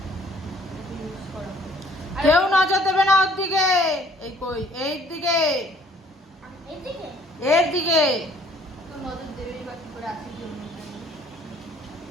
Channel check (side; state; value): both; normal; correlation 0.58